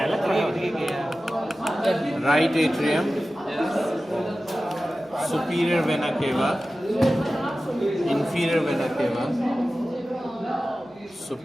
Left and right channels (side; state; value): right; noise; hum, 28 dB below the sound